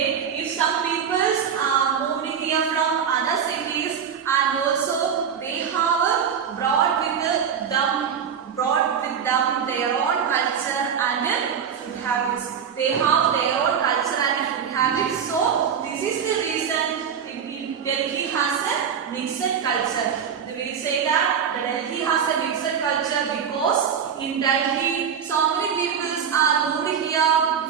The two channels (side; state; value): left; quieter; 7.6 dB